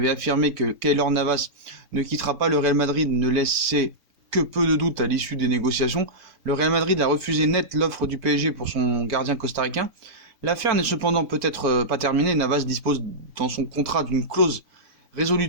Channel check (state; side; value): late; left; 4.4 ms